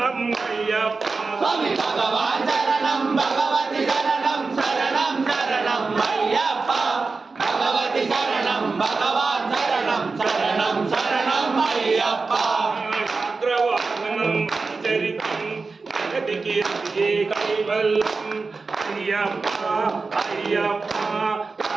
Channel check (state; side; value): quieter; left; 4.1 dB